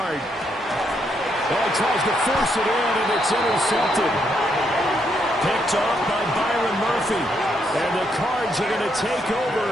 Oh, he tries to force it in, and it's intercepted. Picked off by Byron Murphy. And the Cards are going to take over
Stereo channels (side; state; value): both; normal; correlation 0.76